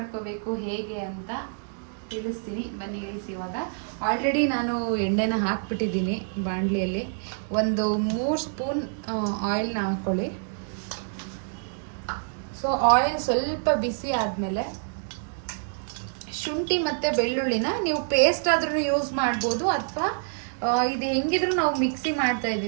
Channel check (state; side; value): silent; left; digital silence